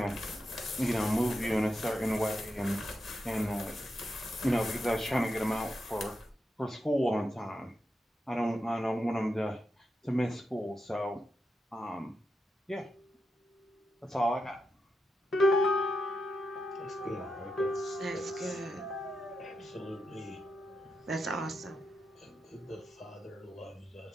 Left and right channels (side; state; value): both; normal; correlation 0.87